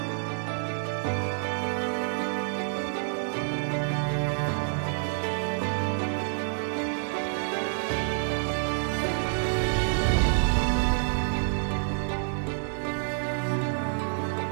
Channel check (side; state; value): left; silent; 58 dB below the other